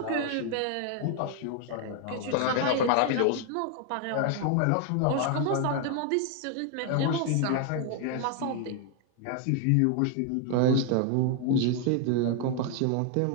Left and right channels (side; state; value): both; different; correlation 0.00